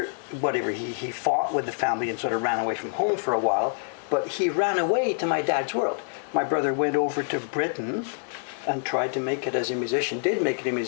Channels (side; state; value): right; silent; digital silence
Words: whatever, he fought with the family and sort of ran away from home for a while, but he ran away to my dad's world. My brother went over to Britain and tried to make it as a musician, did make it a